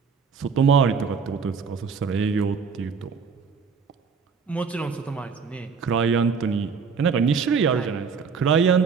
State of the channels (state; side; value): quieter; left; 5.8 dB